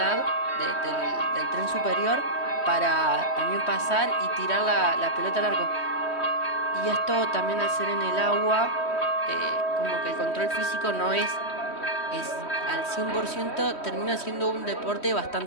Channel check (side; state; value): right; late; 3.1 ms